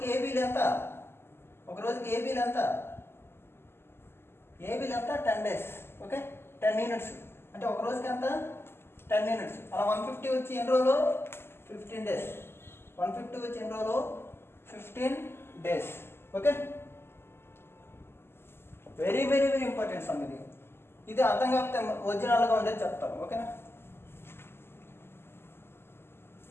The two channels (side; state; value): right; late; 0.12 ms